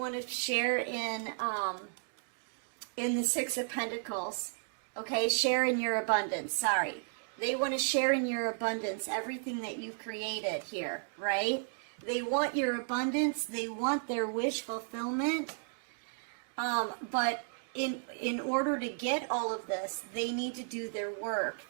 to share in the Six of Pentacles. Okay, share in your abundance. Sorry. They want to share in your abundance everything that you've created here, right? They want your abundance. They want their wish fulfillment. But in order to get all of this, they need to do their work.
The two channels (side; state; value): left; silent; digital silence